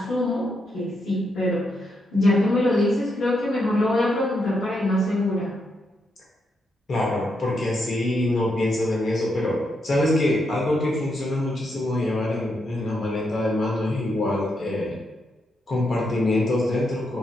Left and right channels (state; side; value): normal; both; correlation 0.81